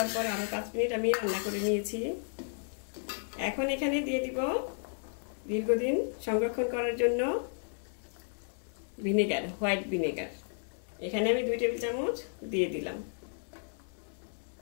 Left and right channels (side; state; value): right; silent; 56 dB below the other